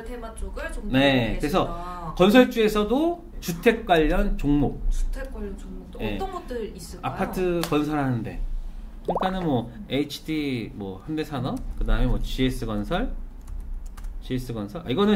테마 쪽을 좀 네, 그래서 건설주에서도 주택 관련 종목, 주택 관련 종목도 네. 어떤 것들 있을까요? 아파트 건설하는데, 그러니까는 뭐 HD, 뭐 현대산업, 그 다음에 뭐 GS 건설. 이거는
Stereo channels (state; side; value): identical; both; correlation 1.00